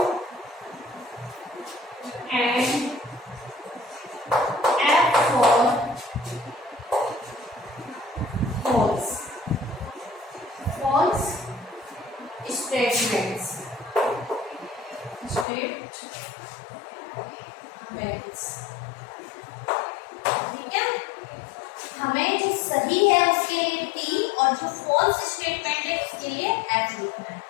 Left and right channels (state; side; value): drops out; right; at 15.5 s